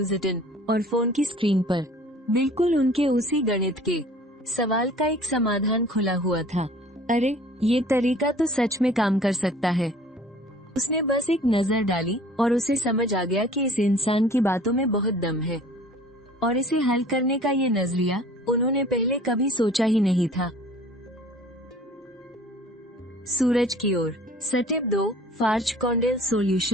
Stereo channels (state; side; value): normal; both; correlation 0.49